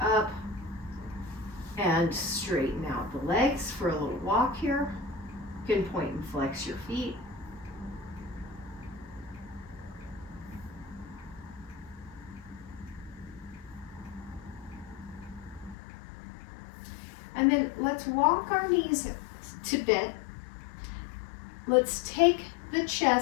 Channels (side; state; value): right; drops out; at 15.8 s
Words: up and straighten out the legs for a little walk here. You can point and flex your feet. And then let's walk our knees to bent. Let's take the